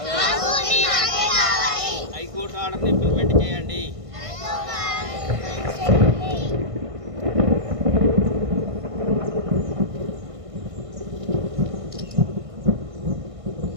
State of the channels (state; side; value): late; left; 1.5 ms